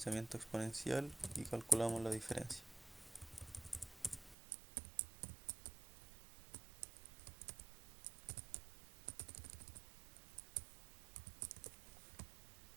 exponencial y calculamos la diferencia.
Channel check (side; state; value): left; drops out; at 4.4 s